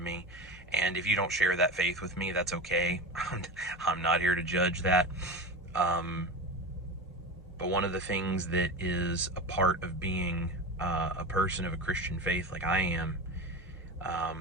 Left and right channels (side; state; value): both; normal; correlation 0.26